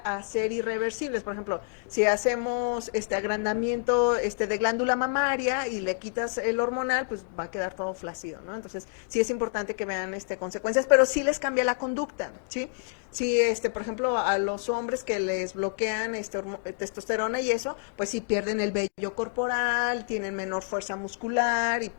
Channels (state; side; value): silent; right; digital silence